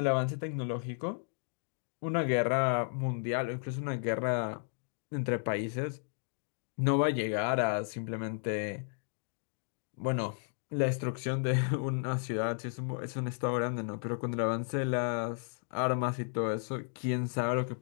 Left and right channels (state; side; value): silent; right; digital silence